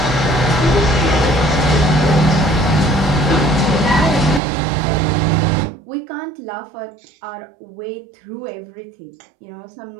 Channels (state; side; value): drops out; left; at 4.4 s